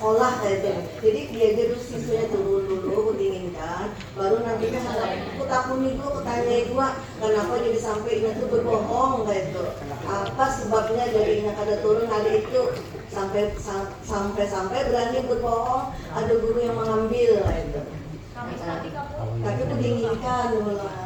kayak itu. Jadi dia dulu siswanya turun dulu, ku dinginkan, baru nantinya aku takuni dulu, ku tanya gua, kenapa jadi sampai ini tuh berbohong kayak itu, apa sebabnya jadi ini kada turun hari itu. Sampai berani berbohong, ada guru yang mengambil itu. Tapi dinginkan dulu.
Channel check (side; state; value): both; identical; correlation 1.00